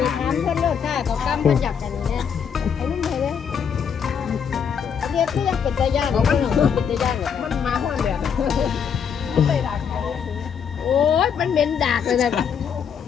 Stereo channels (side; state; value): right; quieter; 7.3 dB